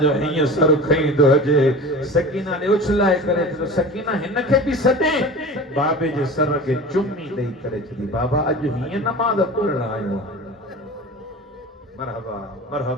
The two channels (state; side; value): normal; both; correlation 0.35